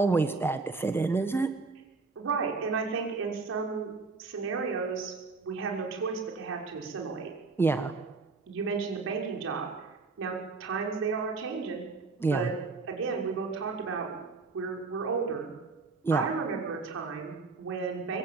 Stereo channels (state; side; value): quieter; left; 4.1 dB